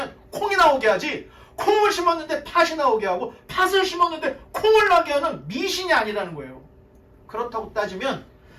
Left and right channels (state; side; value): identical; both; correlation 1.00